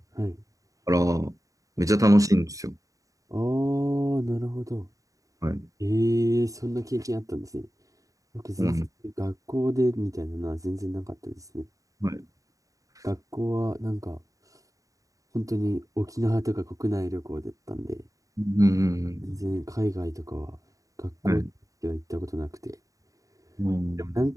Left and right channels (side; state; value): left; late; 0.16 ms